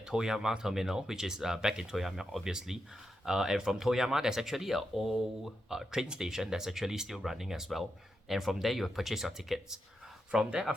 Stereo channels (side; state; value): both; normal; correlation 0.86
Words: Toyama terminal, which is back in Toyama, obviously. And from Toyama, there's actually an old train station that's actually still running as well. And from there, you will purchase your tickets. From there,